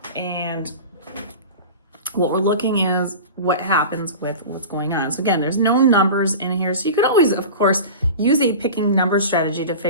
and what we're looking is what happens with what's going on. So again, there's no numbers in here, so you could always, of course, use a picking number strategy to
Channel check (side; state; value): both; inverted; correlation -0.32